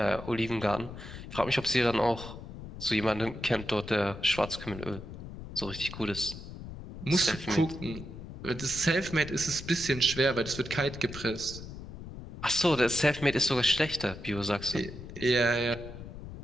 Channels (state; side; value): noise; left; rumble, 11 dB below the sound